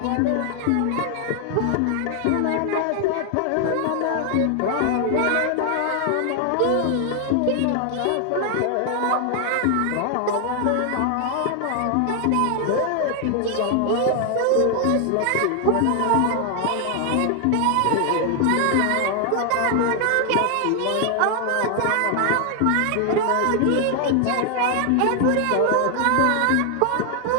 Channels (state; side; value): different; both; correlation 0.00